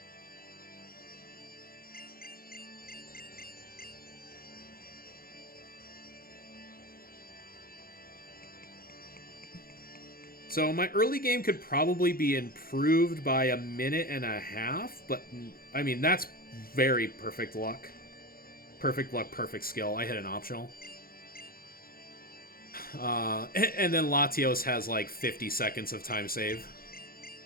So my early game could probably be improved by a minute and a half, but I mean, that's very perfect luck. Perfect luck, perfect skill. I hit an optional. And then Latios has like 50 seconds of time save.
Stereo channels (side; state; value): right; late; 0.43 ms